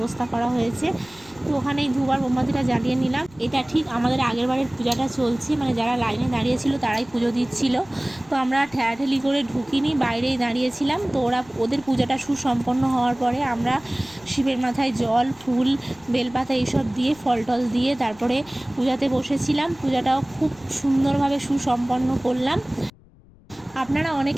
করা হয়েছে। তো ওখানেই ধূপ আর মোমবাতিটা জ্বালিয়ে নিলাম। এটা ঠিক আমাদের আগের বারের পূজাটা চলছে, মানে যারা লাইনে দাঁড়িয়েছিল তারাই পুজো দিচ্ছিল। তো আমরা ঠেলাঠেলি করে ঢুকিনি, বাইরেই দাঁড়িয়েছিলাম। তো ওদের পূজাটা সুসম্পন্ন হওয়ার পরে আমরা শিবের মাথায় জল, ফুল, বেলপাতা এইসব দিয়ে, ফল টল দিয়ে তারপরে পূজাতে বসেছিলাম। পূজাটাও খুব সুন্দরভাবে সুসম্পন্ন করলাম। আপনারা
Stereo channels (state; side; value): noise; left; rumble, 26 dB below the sound